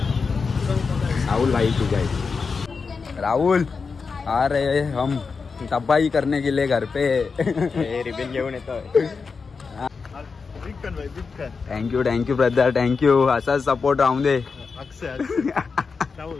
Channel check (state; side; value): quieter; right; 5.0 dB